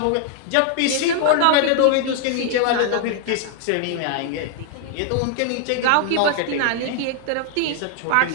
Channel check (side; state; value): both; different; correlation 0.00